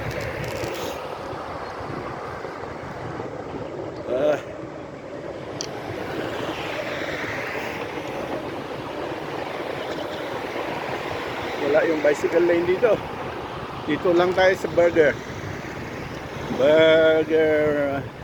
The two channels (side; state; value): both; identical; correlation 1.00